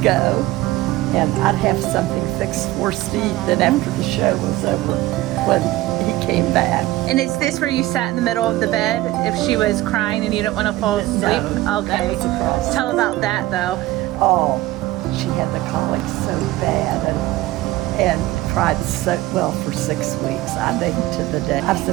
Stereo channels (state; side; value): quieter; left; 17.2 dB